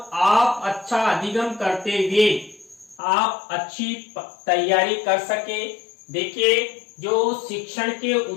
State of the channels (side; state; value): right; drops out; at 3.0 s